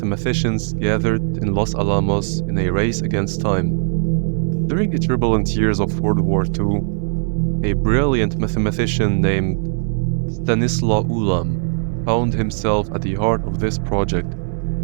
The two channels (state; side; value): silent; left; digital silence